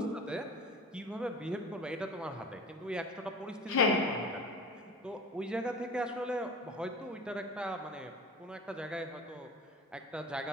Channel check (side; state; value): both; normal; correlation 0.36